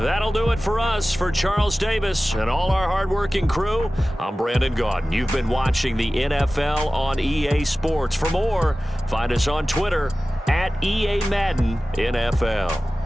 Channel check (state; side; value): normal; both; correlation 0.97